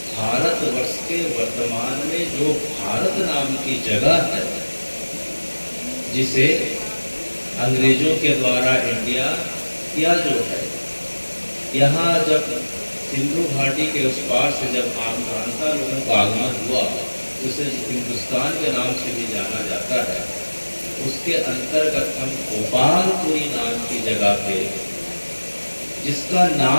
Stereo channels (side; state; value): both; inverted; correlation -1.00